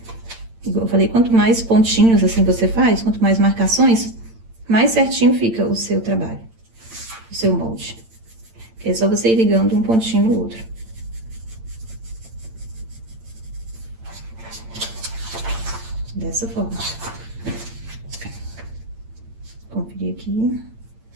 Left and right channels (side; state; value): left; late; 8.8 ms